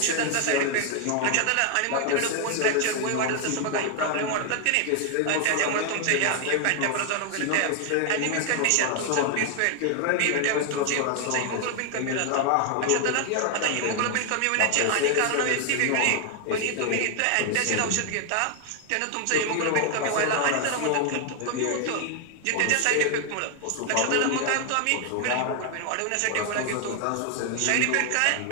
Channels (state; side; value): different; both; correlation 0.00